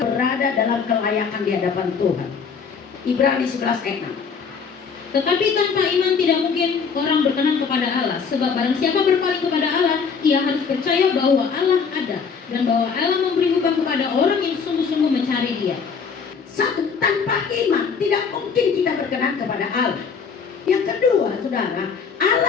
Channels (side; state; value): right; quieter; 5.9 dB